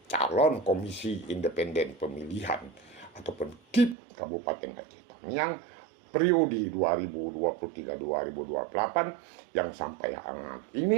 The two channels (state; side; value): drops out; left; at 4.0 s